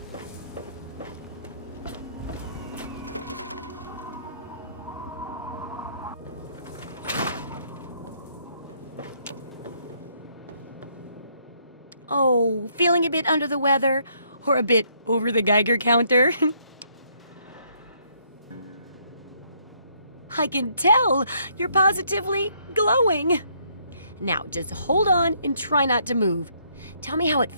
Oh, feeling a bit under the weather or a bit over the Geiger counter? I can tell you're positively glowing. Now, just hold on and try not to move. Tell me how it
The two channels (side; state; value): both; inverted; correlation -0.69